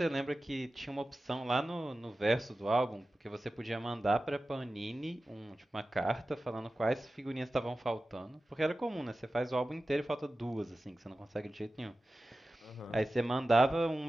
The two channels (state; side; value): normal; both; correlation 0.95